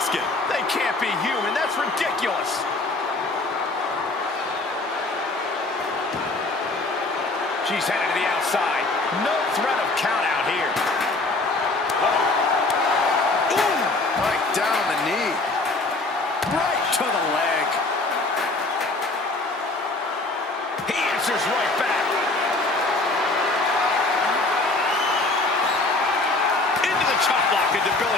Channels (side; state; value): right; quieter; 3.1 dB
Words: They can't be human. That's ridiculous. She's headed to the outside. No threat of count out here. Ooh, right down the knee. Right to the leg. He answers right back. Into the chop block, a